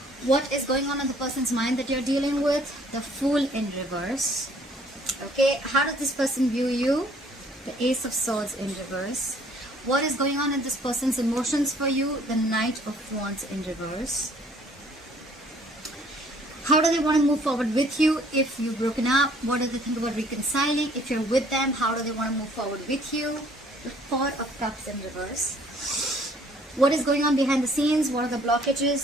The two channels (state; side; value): normal; both; correlation 0.59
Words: What is going on in the person's mind that you're dealing with? The Fool in reverse. Okay, how does this person view you? The Ace of Swords in reverse. What is going on in this person's emotions for you? The Knight of Wands in reverse. How do they want to move forward with you if you've broken up? What do they think about reconciling? If you're with them, how do they want to move forward with you? The Four of Cups in reverse. What is going on behind the scenes? What are the